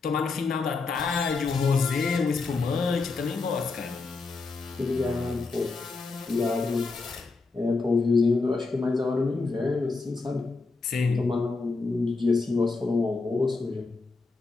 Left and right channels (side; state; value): right; quieter; 4.0 dB